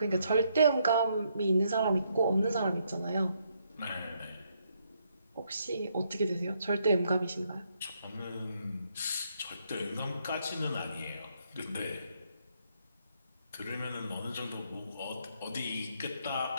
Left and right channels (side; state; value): both; inverted; correlation -0.74